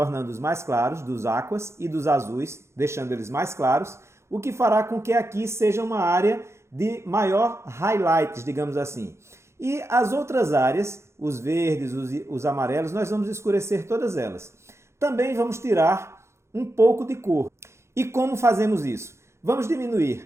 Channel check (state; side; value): late; left; 0.13 ms